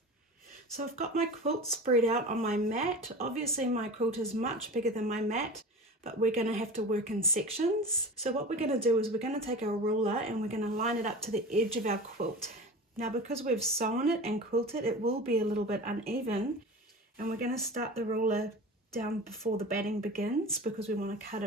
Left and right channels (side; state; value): both; normal; correlation 0.34